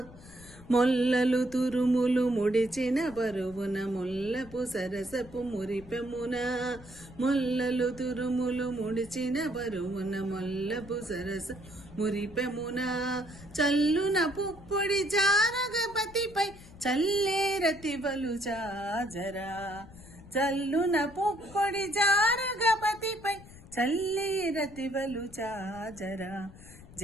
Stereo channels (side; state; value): left; noise; rumble, 19 dB below the sound